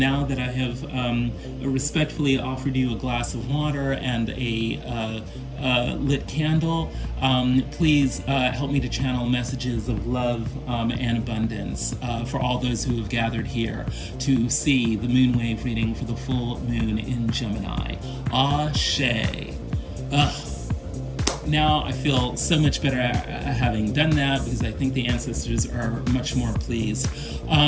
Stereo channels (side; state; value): both; identical; correlation 1.00